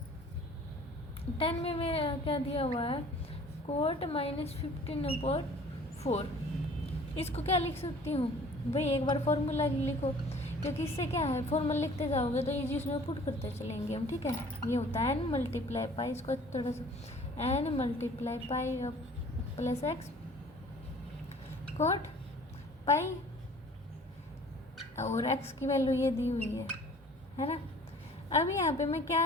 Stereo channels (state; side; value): normal; both; correlation 0.50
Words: 10 में मेरा क्या दिया हुआ है cot -15/4। इसको क्या लिख सकती हूँ भाई, एक बार फॉर्मूला लिखो, क्योंकि इससे क्या है फॉर्मूला लिखते जाओगे तो ये चीज़ में पुट करते चलेंगे हम। ठीक है, ये होता है n × पाई, इसको थोड़ा सा n × पाई + x cot पाई, और x की वैल्यू ये दी हुई है ना। अब यहाँ पे मैं क्या